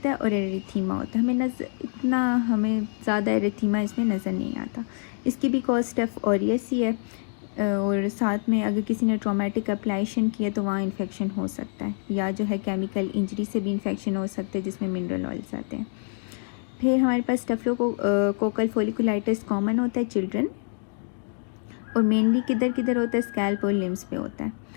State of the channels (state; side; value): silent; right; 55 dB below the other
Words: है और एरिथीमा होता है। हमें ज़्यादा एरिथीमा इसमें नज़र नहीं आता। इसकी भी कॉज स्टेफ ऑरियस ही है, और साथ में अगर किसी ने ट्रॉमेटिक एप्लाइशन किया तो वहाँ इन्फेक्शन हो सकता है, या जो है केमिकल इंजरी से भी इन्फेक्शन हो सकते हैं जिसमें मिनरल ऑयल्स आते हैं। फिर हमारे पास स्टेफिलोकोकल फोलिकुलाइटिस कॉमन होता है चिल्ड्रन, और मेनली किधर किधर होता है, स्कैल्प और लिम्स पे होता है।